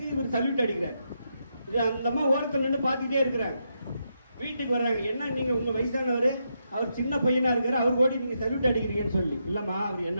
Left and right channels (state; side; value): inverted; both; correlation -0.82